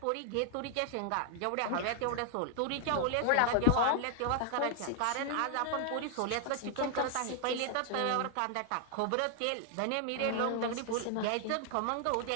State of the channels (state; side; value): different; both; correlation 0.00